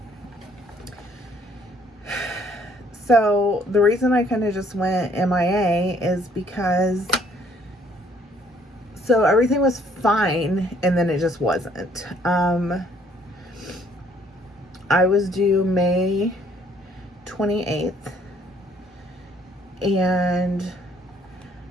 So the reason I kind of just went MIA is because, so everything was fine and then it just wasn't. I was due May 28th and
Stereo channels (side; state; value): both; normal; correlation 0.63